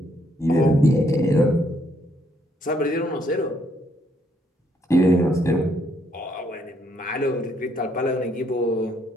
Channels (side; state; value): both; normal; correlation 0.71